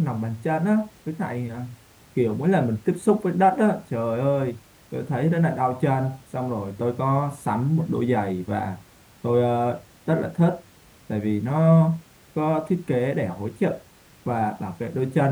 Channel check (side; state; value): both; identical; correlation 1.00